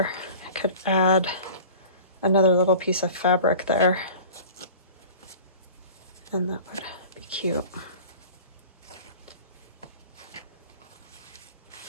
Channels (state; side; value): inverted; both; correlation -0.41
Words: I could add another little piece of fabric there, and that would be cute.